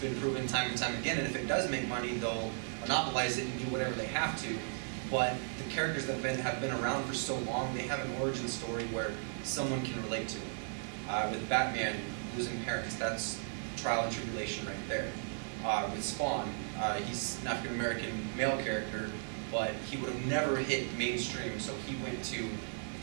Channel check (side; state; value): left; silent; 54 dB below the other